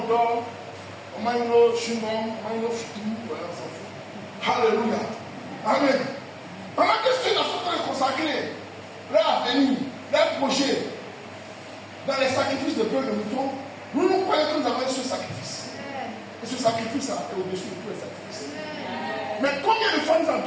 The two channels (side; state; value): both; identical; correlation 1.00